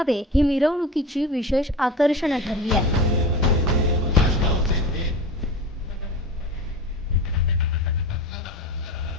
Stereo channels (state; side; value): normal; both; correlation 0.31